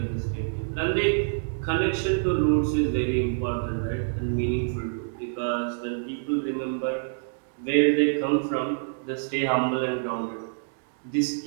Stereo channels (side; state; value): left; silent; digital silence